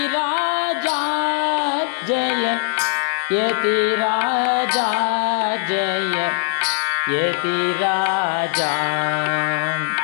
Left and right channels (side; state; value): right; silent; 61 dB below the other